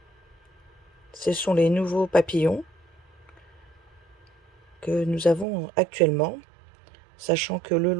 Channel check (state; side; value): drops out; left; at 5.5 s